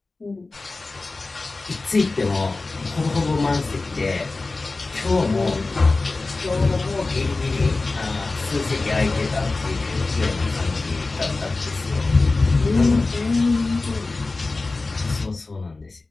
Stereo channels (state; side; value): quieter; right; 3.5 dB